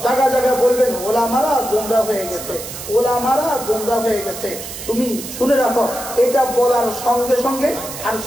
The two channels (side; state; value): right; noise; hiss, 10 dB below the sound